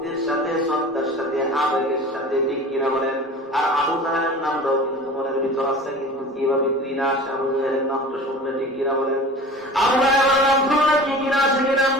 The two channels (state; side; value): normal; both; correlation 0.38